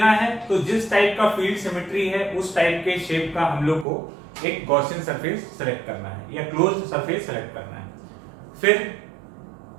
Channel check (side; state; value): left; drops out; at 3.9 s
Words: है, तो जिस टाइप का फील्ड सिमेट्री है उस टाइप के शेप का हम लोग को एक गॉसियन सरफेस सेलेक्ट करना है या क्लोज सरफेस सेलेक्ट करना है। फिर